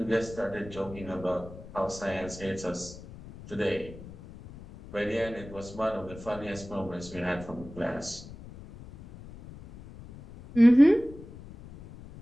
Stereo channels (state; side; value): noise; left; rumble, 16 dB below the sound